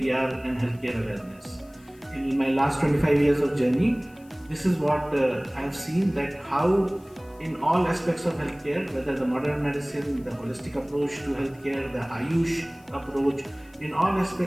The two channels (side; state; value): left; noise; hiss, 29 dB below the sound